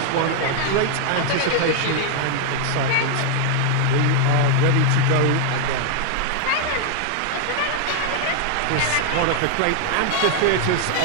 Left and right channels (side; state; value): both; different; correlation 0.00